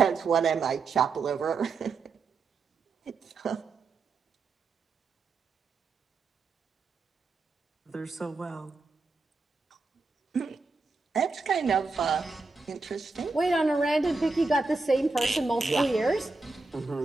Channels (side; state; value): left; quieter; 3.9 dB